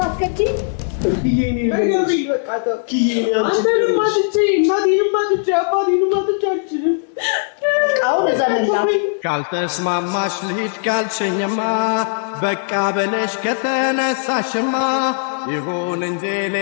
ካልተስማማሽ ልሂድ ካልሽኝማ በቃ በለሽ ከተነሳሽማ ይሁን እንጂ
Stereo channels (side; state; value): right; silent; digital silence